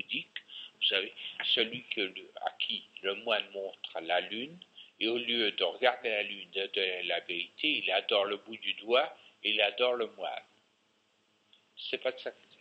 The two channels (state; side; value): identical; both; correlation 1.00